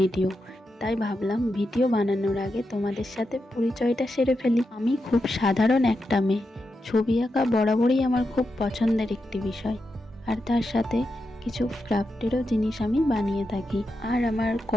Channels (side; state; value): both; normal; correlation 0.87